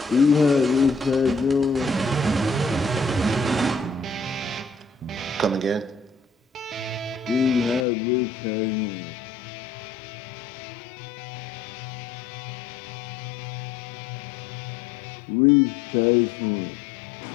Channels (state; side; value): drops out; right; at 7.9 s